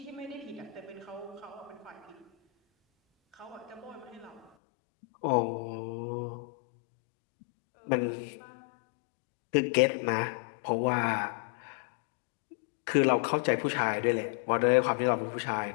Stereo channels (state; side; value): drops out; right; at 4.5 s